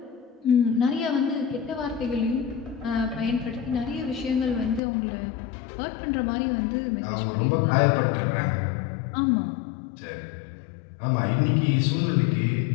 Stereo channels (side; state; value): right; drops out; at 4.8 s